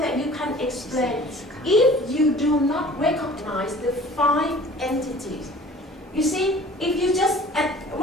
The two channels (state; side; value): normal; both; correlation 0.47